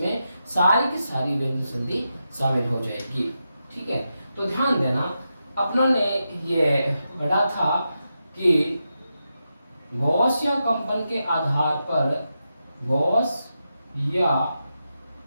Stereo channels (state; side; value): inverted; both; correlation -0.88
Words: सारी की सारी व्यंजन संधि शामिल हो जाएगी। ठीक है, तो ध्यान देना, अपनों ने ये पढ़ा था कि गॉस या कंपन के आधार पर, गॉस या